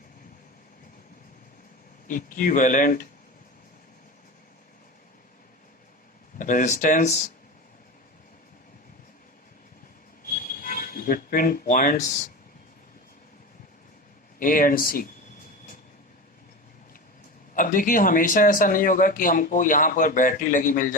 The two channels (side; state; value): both; normal; correlation 0.26